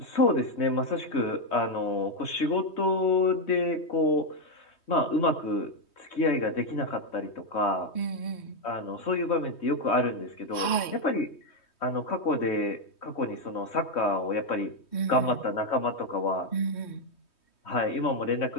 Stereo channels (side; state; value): right; late; 3.2 ms